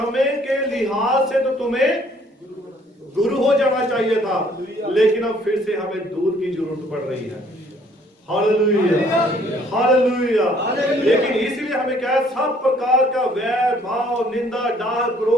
के लिहाज से तो तुम्हें गुरु हो जाना चाहिए था, लेकिन अब फिर से हमें दूध की जरूरत पड़ रही है। Hallelujah, hallelujah. लेकिन इसलिए हमें क्या है, सब प्रकार का वैर भाव, निंदा, डाह,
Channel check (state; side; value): normal; both; correlation 0.61